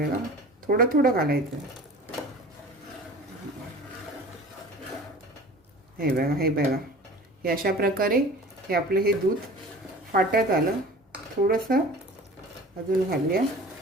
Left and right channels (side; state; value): both; normal; correlation 0.41